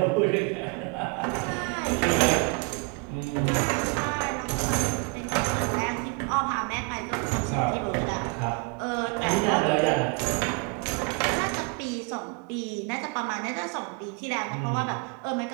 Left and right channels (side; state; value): left; quieter; 32.2 dB